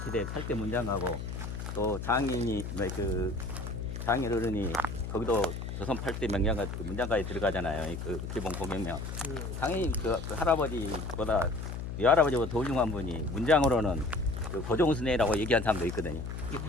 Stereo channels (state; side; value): noise; left; hum, 6 dB below the sound